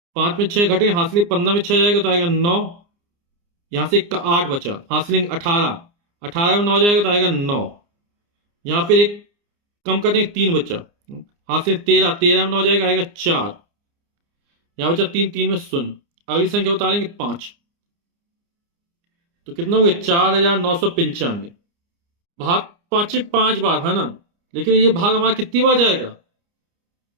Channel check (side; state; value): left; late; 29 ms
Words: 5 में 6 घटे, हाथ से 15 में 6 जाएगा तो आएगा 9, यहां से 8 बचा, हाथ से लेंगे 18, 18 में 9 जाएगा तो आएगा 9, यहां फिर 1 कम कर देंगे 3 बचा, हाथ से 13, 13 में 9 जाएगा आएगा 4, यहां बचा 3, 3 में 0। अगली संख्या उतारेंगे 5, तो कितना हो गया? 4995। भाग 5 बार, है ना, लेकिन ये भाग हमारा कितनी बार जाएगा?